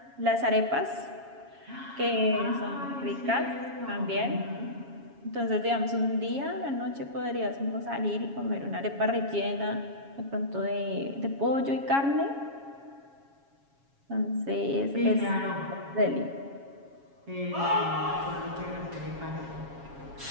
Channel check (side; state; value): left; late; 7.3 ms